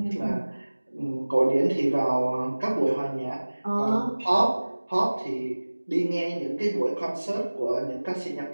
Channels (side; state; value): both; inverted; correlation -1.00